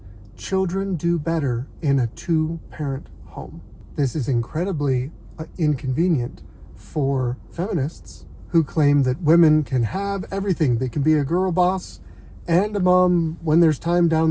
children do better in a two-parent home. This is incredibly inconvenient for feminists who claim that women can have everything. They can be a girl boss and a mom when there's time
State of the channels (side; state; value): both; identical; correlation 1.00